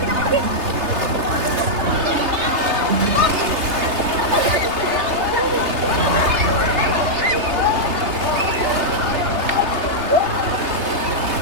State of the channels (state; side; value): late; left; 3.3 ms